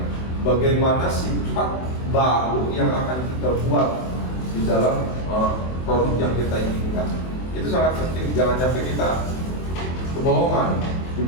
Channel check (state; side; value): late; right; 24 ms